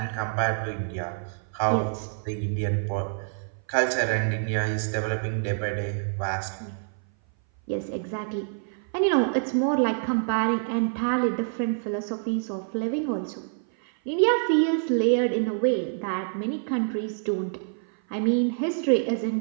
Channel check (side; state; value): left; silent; 57 dB below the other